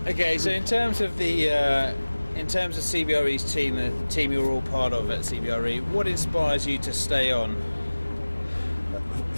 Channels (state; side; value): inverted; both; correlation -1.00